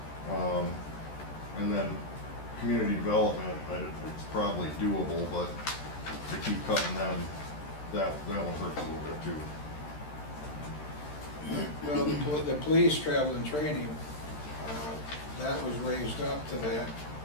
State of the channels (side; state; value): right; late; 13 ms